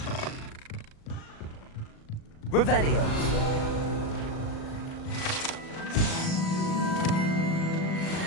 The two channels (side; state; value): right; late; 37 ms